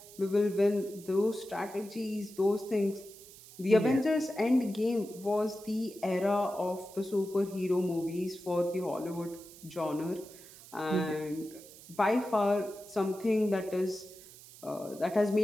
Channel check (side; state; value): right; noise; hiss, 19 dB below the sound